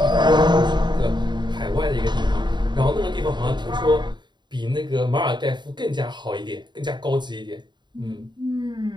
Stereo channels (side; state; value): left; late; 0.22 ms